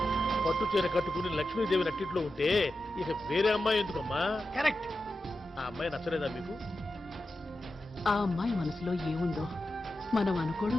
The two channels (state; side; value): normal; both; correlation 0.91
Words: పట్టు చీర కట్టుకుని లక్ష్మీదేవి నట్టిట్లో ఉంటే ఇక వేరే అమ్మాయి ఎందుకమ్మా? కరెక్ట్. ఆ అమ్మాయి నచ్చలేదా మీకు? ఆ అమ్మాయి మనసులో ఏముందో మనం